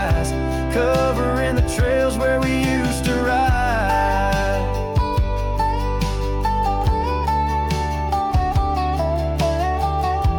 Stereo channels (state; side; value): identical; both; correlation 1.00